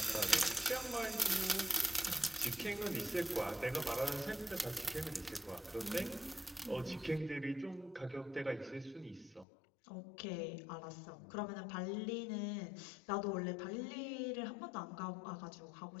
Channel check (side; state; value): right; drops out; at 9.5 s